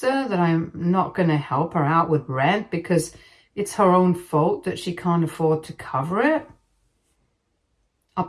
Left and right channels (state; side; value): identical; both; correlation 1.00